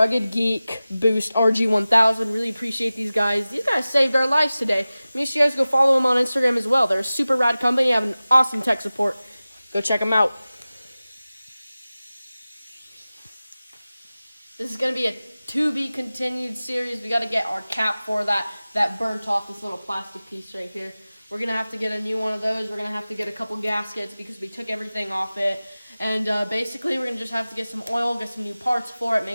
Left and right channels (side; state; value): both; inverted; correlation -0.97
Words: Geek Boost RG1000. Really appreciate these guys. These guys saved our lives today. Make sure you guys go follow them on Instagram as well. They're a super rad company. They have an awesome tech support. Go check them out. This is going to be a to-be-continued series. We got to get our cap for that burnt off this little plastic piece right here. We're going to have to get a new one of those. We're going to have to get a couple gaskets because we took everything off it. And basically, we're going to just have to get some oil, get some new parts for it,